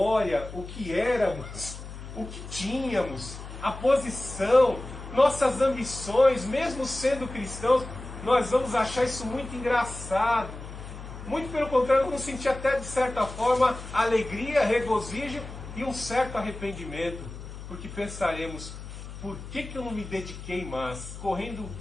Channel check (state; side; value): noise; left; hum, 12 dB below the sound